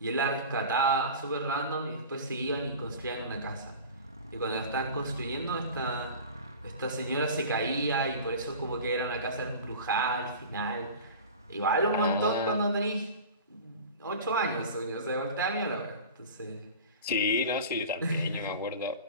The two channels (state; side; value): inverted; both; correlation -0.36